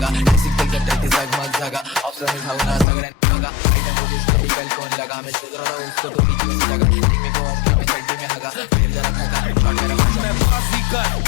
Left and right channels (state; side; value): drops out; right; at 2.9 s